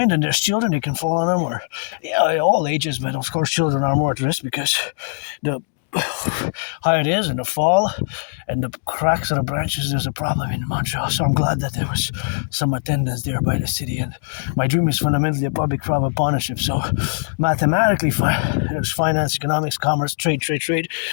and there's children, they can fall on them. Or, yeah, all ages, but of course children are more at risk because the higher it is and the fall and the cracks of the branches, there's a problem in Montreal. So I'm glad that there was some attendance there by the city. And my dream is fundamentally a public-private partnership. So mathematically, there's finance, economics, commerce, trade.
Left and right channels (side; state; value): right; silent; digital silence